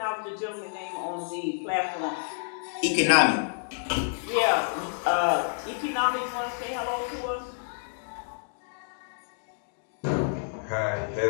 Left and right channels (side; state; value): right; silent; digital silence